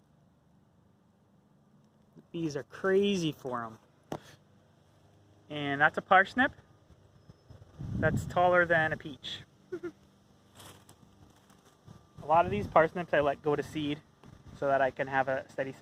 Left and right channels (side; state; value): both; identical; correlation 1.00